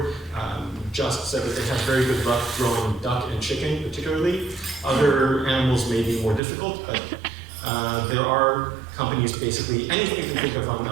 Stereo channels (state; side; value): drops out; left; at 6.4 s